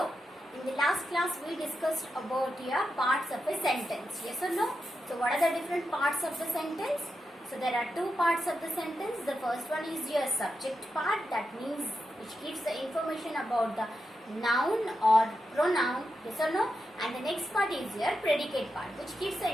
in the last class we discussed about your parts of a sentence. Yes or no? So, what are the different parts of the sentence? So, there are two parts of the sentence. The first one is your subject part, that means which gives the information about the noun or pronoun. Yes or no? And the next part is your predicate part, which gives the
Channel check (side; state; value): both; normal; correlation 0.87